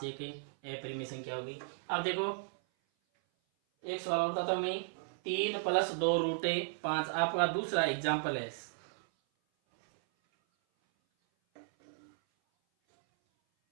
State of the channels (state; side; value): silent; left; 54 dB below the other